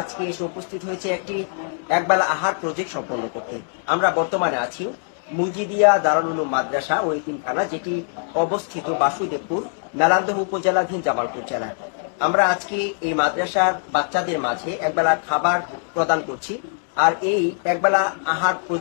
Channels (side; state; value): right; silent; 60 dB below the other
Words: আজকে এসে উপস্থিত হয়েছি একটি একবেলা আহার প্রজেক্ট সম্পন্ন করতে। আমরা বর্তমানে আছি মুজিদিয়া দারুল উলুম মাদ্রাসা ও এতিমখানা, যেটি অবস্থিত বাসুদেবপুর মেলান্দহ উপজেলাধীন জামালপুর জেলায়। আমরা আজকে এই মাদ্রাসার বাচ্চাদের মাঝে একবেলা খাবার প্রদান করছি। আর এই একবেলা আহার